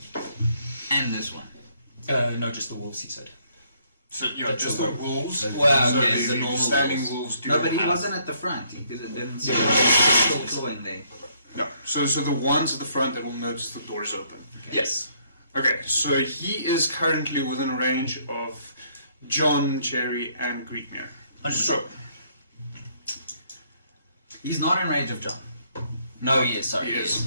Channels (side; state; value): both; inverted; correlation -0.68